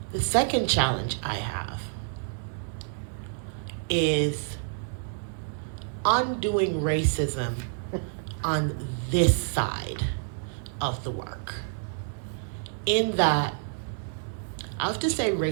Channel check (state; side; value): silent; left; 59 dB below the other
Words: The second challenge I have is undoing racism on this side of the work. In that, I have to say